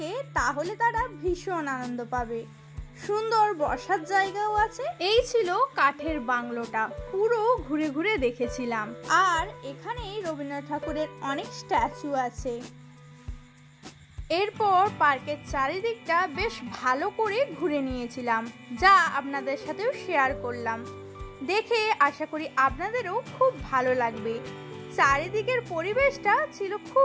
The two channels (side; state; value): both; identical; correlation 1.00